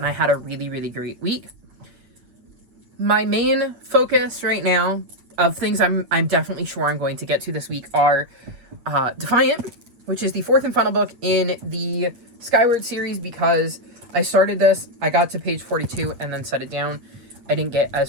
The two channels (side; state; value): left; late; 8.5 ms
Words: I had a really great week. My main focus right now of things I'm definitely sure I'm going to get to this week are Defiant, which is the fourth and final book in the Skyward series, because I started this, I got to page 42 and then set it down. I didn't get as